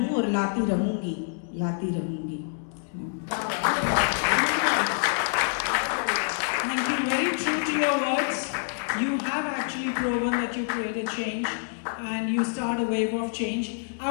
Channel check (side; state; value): right; silent; digital silence